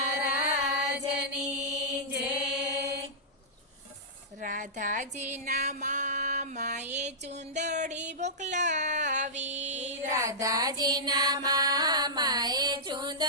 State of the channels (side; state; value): both; normal; correlation -0.14